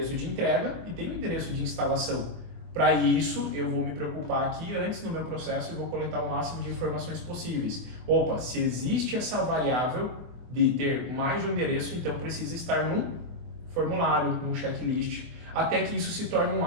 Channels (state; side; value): late; left; 24 ms